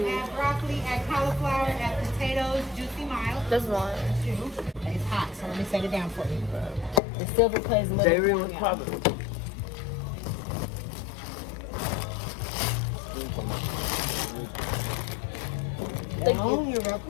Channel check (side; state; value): right; drops out; at 7.0 s